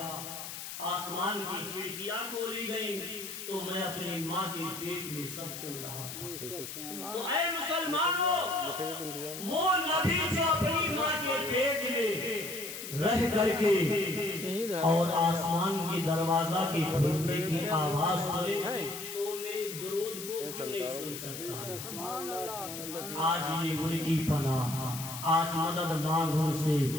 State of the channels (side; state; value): left; noise; hiss, 9 dB below the sound